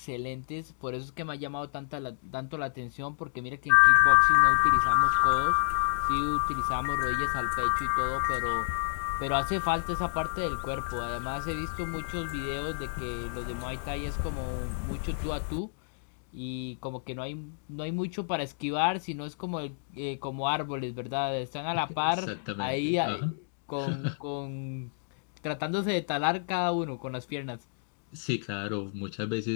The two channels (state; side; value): silent; right; digital silence